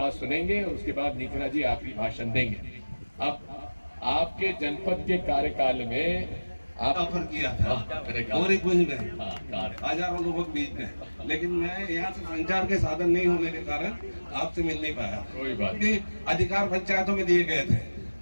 सुनेंगे और उसके बाद नीतिना जी आपकी भाषण देंगे। अब आपके जनपद के कार्यकाल में आप ऑफर किया था और एक वही में हजारों लोगों के बीच में, लेकिन मैं यहाँ से संचार के साधन नहीं होने के कारण आपसे मिल नहीं पाया। कोई बात नहीं, अधिकार पंचायतों में दिए गए थे,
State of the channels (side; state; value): both; inverted; correlation -1.00